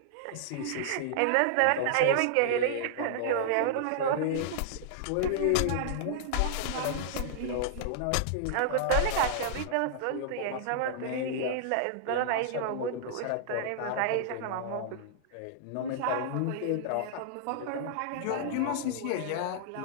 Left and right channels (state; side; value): different; both; correlation -0.01